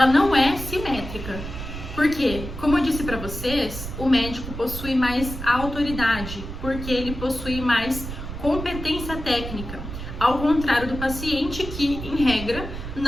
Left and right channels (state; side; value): noise; right; rumble, 8 dB below the sound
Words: não é simétrica. Porque, como eu disse para vocês, o médico possui mais autoridade, porque ele possui mais competência técnica, ao contrário do paciente que, em regra,